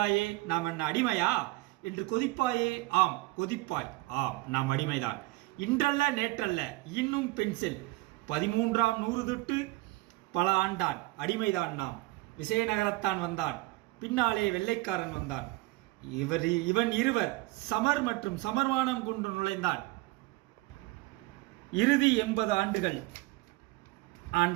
நாம் என்ன அடிமையா என்று கொதிப்பாயே. ஆம் கொதிப்பாய். ஆம் நாம் அடிமைதான். இன்றல்ல நேற்றல்ல இன்னும் பென்சில் 13ஆம் நூறு தொட்டு பல ஆண்டான் அடிமைதான் நாம். விசயநகரத்தான் வந்தான், பின்னாலே வெள்ளைக்காரன் வந்தான். இவன் இருவர் சமர் மற்றும் சமர்மானம் கொண்டு நுழைந்தான். இறுதி 80 ஆண்டுகள்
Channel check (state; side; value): quieter; left; 20.5 dB